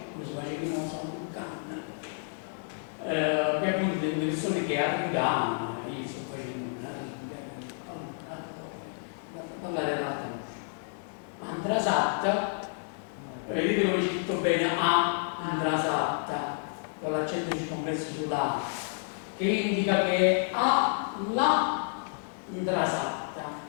come si faceva in San Luccan, che appunto delle persone che arrivano, io sto facendo parlare ad alta voce. Andrasatta, vedete come c'è scritto bene, Andrasatta, con l'accento circonflesso sulla A, che indica che è a la Andrasatta,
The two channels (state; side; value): silent; right; 58 dB below the other